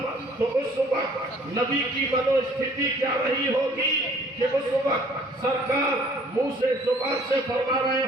تو اس وقت نبی کی منو استھتی کیا رہی ہوگی کہ اس وقت سرکار منہ سے زبان سے فرما رہے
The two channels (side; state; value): both; normal; correlation 0.56